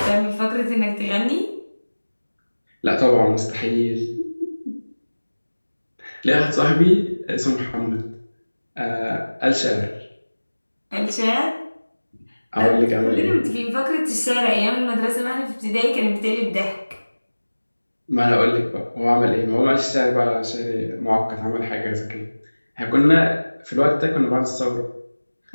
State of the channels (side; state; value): both; inverted; correlation -1.00